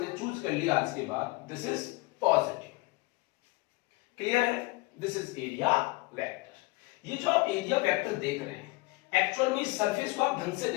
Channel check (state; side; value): quieter; right; 23.2 dB